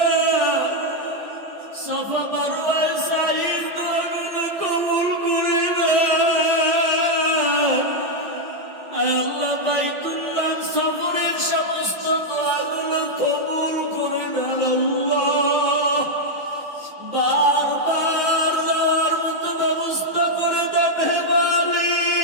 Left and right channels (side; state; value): both; normal; correlation 0.00